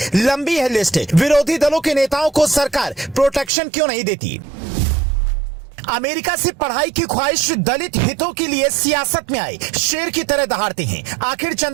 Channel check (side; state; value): left; drops out; at 3.5 s